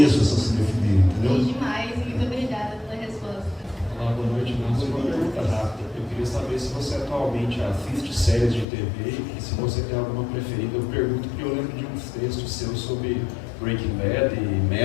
essa cinefilia, entendeu? Sim, demais, muito obrigada pela resposta. Olá, boa noite. Uma pergunta rápida. Eu queria saber se você atualmente assiste séries de TV e se você tem alguma preferida. Eu pergunto porque eu lembro de uns textos seus sobre Breaking Bad e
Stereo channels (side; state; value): right; drops out; at 8.7 s